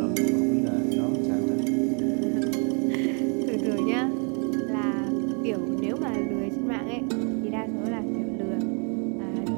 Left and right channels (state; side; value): quieter; left; 38.8 dB